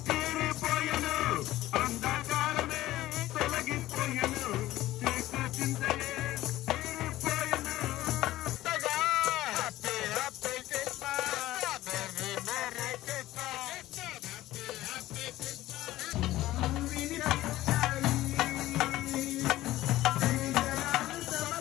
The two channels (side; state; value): right; quieter; 15.8 dB